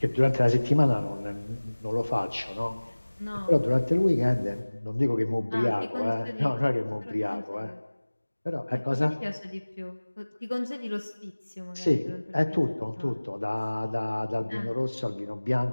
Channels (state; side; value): inverted; both; correlation -1.00